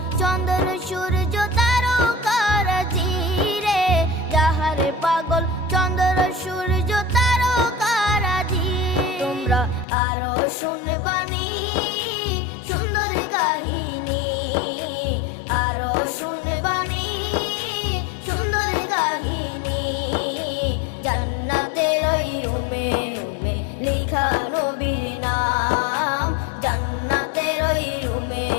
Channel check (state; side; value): drops out; right; at 9.9 s